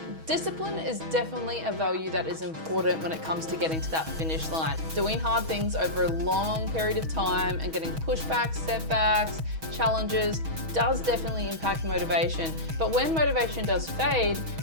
discipline is definitely a value that is important when it comes to getting to that finish line. Doing hard things over a long period of time and getting pushbacks, setbacks, challenges does definitely impact motivation. But when motivation does fade,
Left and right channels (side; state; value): left; late; 6.2 ms